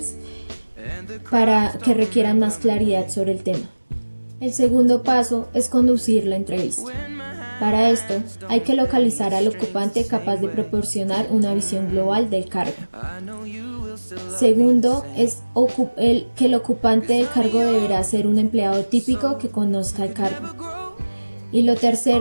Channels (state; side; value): inverted; both; correlation -1.00